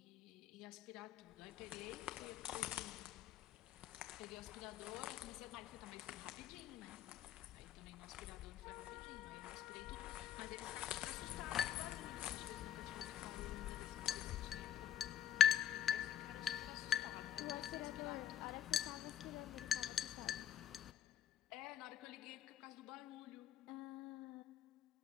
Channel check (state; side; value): quieter; right; 9.9 dB